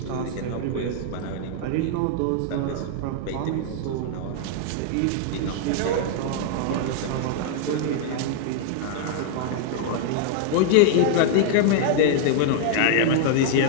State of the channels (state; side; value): different; both; correlation -0.01